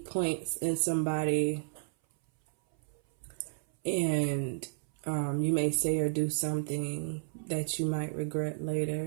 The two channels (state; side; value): silent; left; 56 dB below the other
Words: points in somebody, and you may say or do something that you might regret